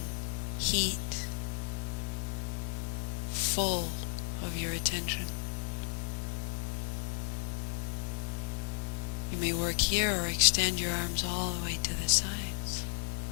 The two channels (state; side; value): silent; right; digital silence